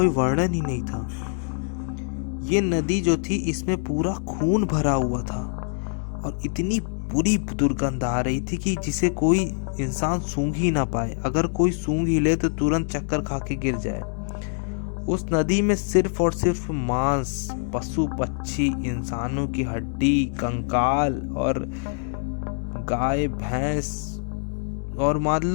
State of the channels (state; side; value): silent; right; digital silence